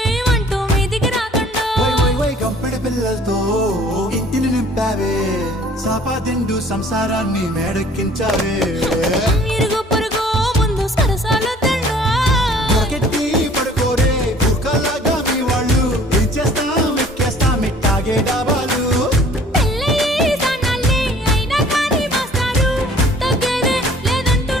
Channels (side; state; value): both; normal; correlation 0.53